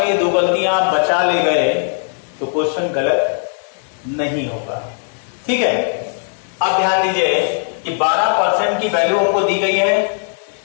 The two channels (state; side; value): silent; right; digital silence